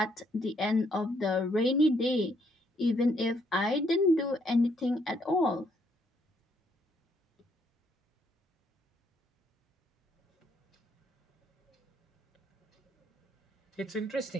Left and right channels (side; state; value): both; normal; correlation 0.71